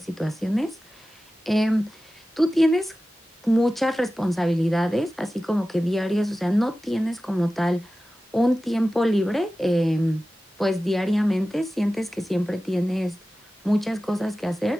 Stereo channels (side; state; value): both; normal; correlation 0.95